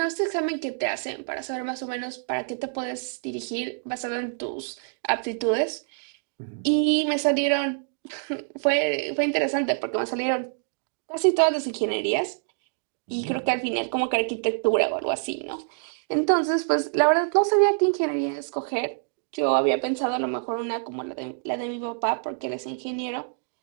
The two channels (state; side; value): silent; left; digital silence